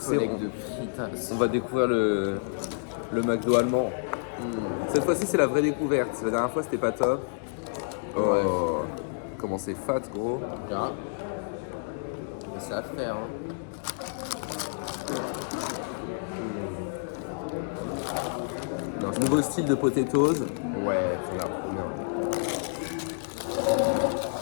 fritas. On va découvrir le McDo allemand. Cette fois-ci c'est la vraie découverte. La dernière fois c'était pas top. Oh, Ouais. comment c'est fat gros. Là. Et c'est à faire. Hein. Non, nouveau style de potatoes. Ouais, ça a l'air trop bien.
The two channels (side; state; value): right; silent; digital silence